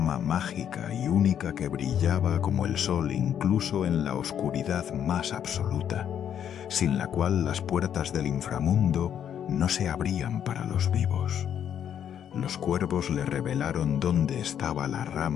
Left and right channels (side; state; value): right; quieter; 9.3 dB